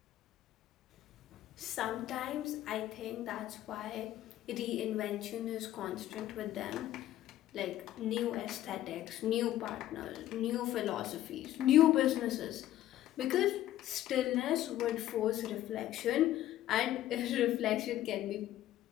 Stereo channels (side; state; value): right; quieter; 13.4 dB